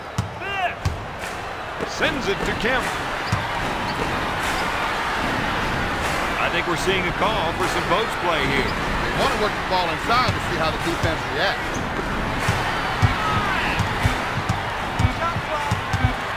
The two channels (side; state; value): both; identical; correlation 1.00